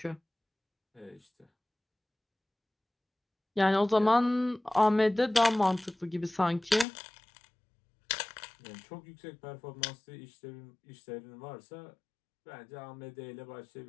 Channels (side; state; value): right; drops out; at 6.9 s